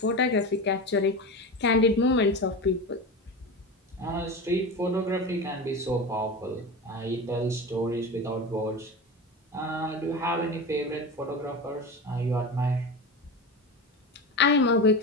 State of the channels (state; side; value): normal; both; correlation 0.25